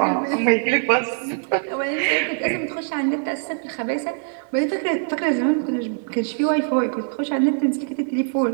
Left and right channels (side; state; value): left; silent; 64 dB below the other